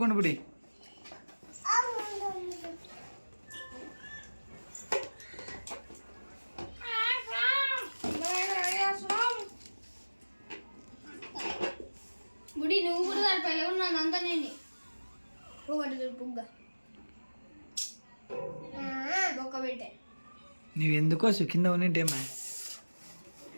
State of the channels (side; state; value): both; inverted; correlation -1.00